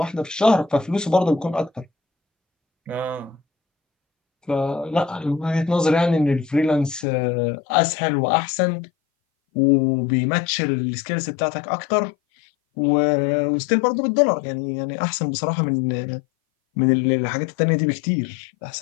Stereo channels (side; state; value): right; drops out; at 7.1 s